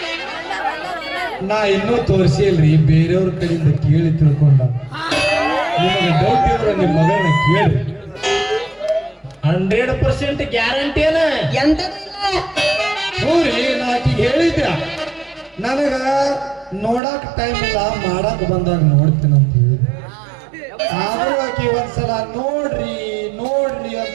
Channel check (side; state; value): left; drops out; at 17.0 s